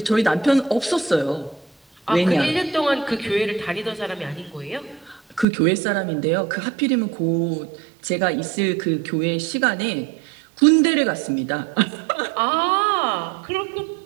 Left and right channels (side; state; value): left; drops out; at 5.5 s